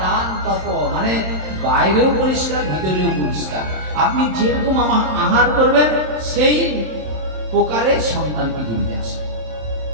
দান, তপ, মানে বাইরেও পরিষ্কার, ভিতরেও পরিষ্কার। আপনি যেরকম আহার করবেন, সেই প্রকারে সন্তান পৃথিবীতে আসবে।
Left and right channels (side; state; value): left; late; 27 ms